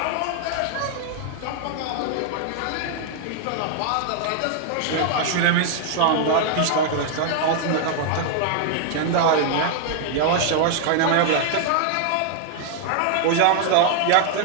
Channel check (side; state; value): both; different; correlation 0.00